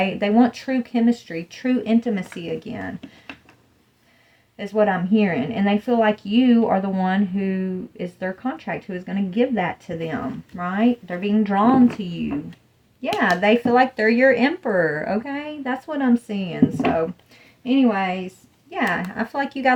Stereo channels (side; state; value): both; identical; correlation 1.00